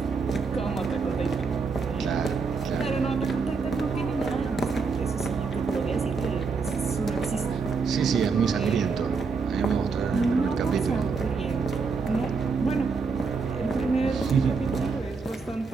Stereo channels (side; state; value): left; quieter; 4.8 dB